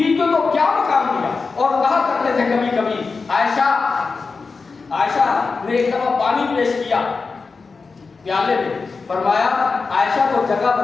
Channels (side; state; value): right; quieter; 4.5 dB